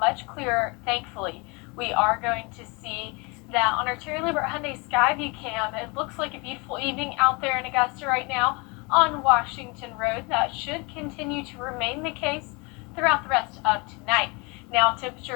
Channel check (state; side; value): quieter; right; 29.1 dB